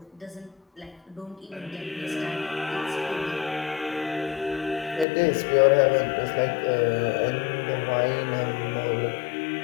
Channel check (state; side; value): drops out; right; at 5.1 s